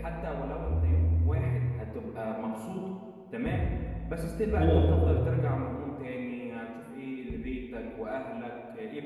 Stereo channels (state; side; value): identical; both; correlation 1.00